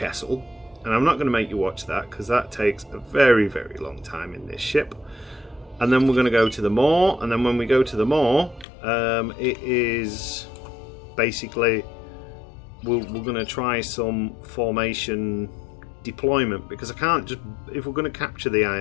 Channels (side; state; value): right; drops out; at 8.7 s